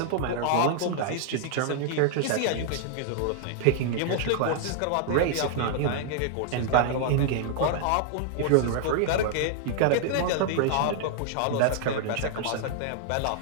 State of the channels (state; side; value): different; both; correlation -0.01